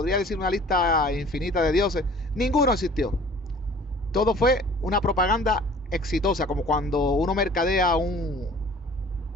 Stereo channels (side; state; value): both; normal; correlation 0.49